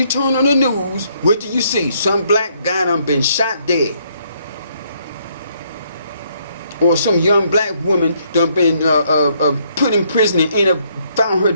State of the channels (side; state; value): both; inverted; correlation -0.70